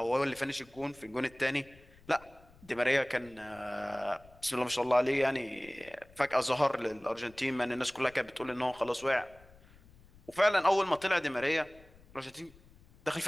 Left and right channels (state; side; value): noise; left; rumble, 25 dB below the sound